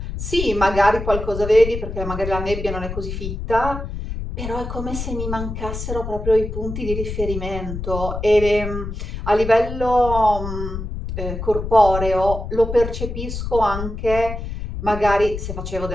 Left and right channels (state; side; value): noise; left; rumble, 6 dB below the sound